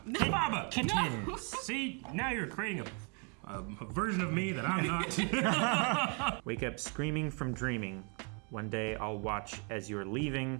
Dababa. Kittens. See, now you're creating a version of me that I'm not. Wake up screaming from dreaming. One day I'll watch as you're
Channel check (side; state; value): left; quieter; 36.4 dB